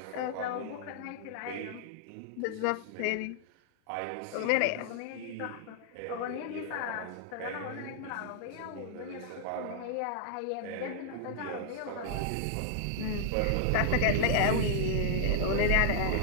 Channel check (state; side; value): different; both; correlation -0.01